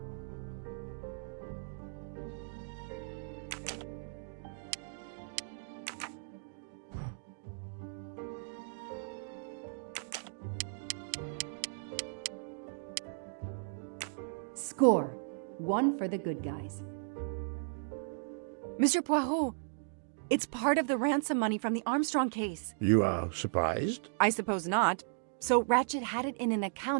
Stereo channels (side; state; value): left; silent; digital silence